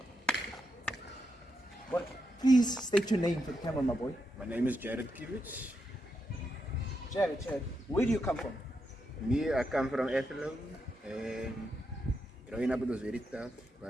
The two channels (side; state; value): both; normal; correlation 0.84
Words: What? Please state your name for the camera, my boy. My name is Jared Kivich. Jared, where do you come from? Me, I come from Ethelo, and growing up it was very tough,